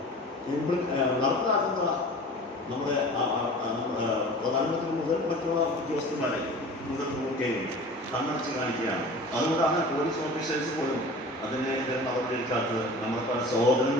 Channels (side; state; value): right; noise; hum, 29 dB below the sound